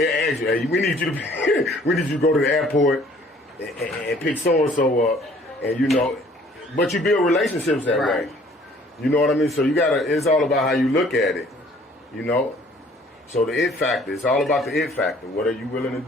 asked you, "Hey, we need you to go to the airport and pick so and so up," and but you build relationships that way. You know what I mean? So you gotta. It's all about how you look at it. So the it factor, it's all about the it factor. What are you willing to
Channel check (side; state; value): both; normal; correlation 0.56